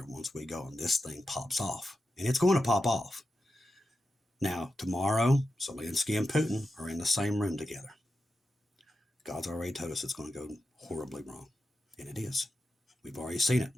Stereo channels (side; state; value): both; normal; correlation 0.89